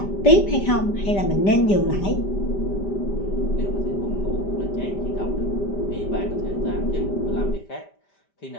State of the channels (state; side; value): late; right; 5.1 ms